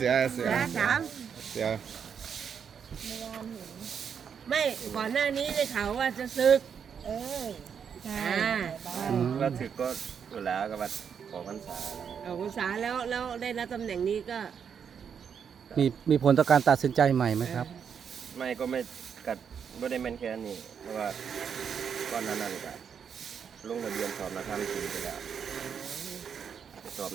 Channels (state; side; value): quieter; left; 7.2 dB